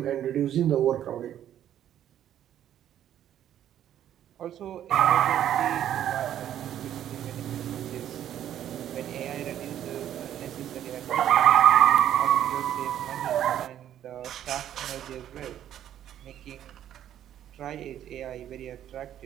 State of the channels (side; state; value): left; quieter; 10.9 dB